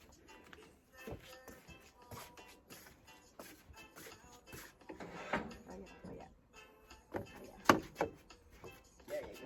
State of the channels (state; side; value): identical; both; correlation 1.00